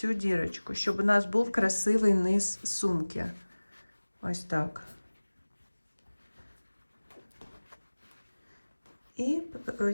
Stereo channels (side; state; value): both; inverted; correlation -1.00